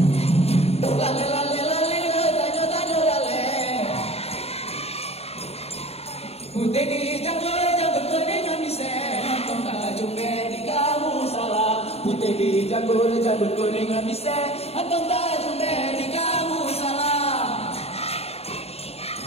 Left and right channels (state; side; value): late; right; 0.30 ms